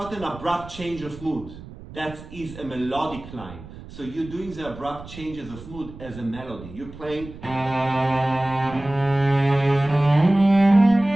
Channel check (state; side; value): noise; right; rumble, 16 dB below the sound